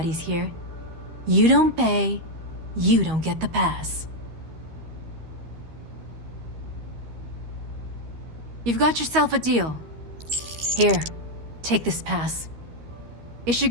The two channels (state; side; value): late; left; 13 ms